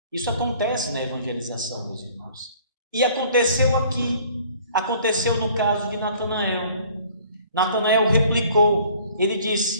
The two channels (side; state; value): both; inverted; correlation -0.54